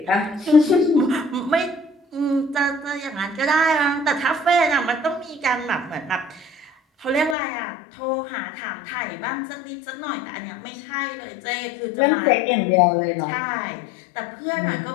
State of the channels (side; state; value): right; drops out; at 7.4 s